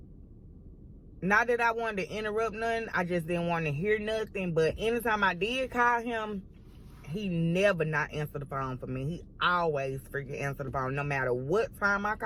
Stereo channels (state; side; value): identical; both; correlation 1.00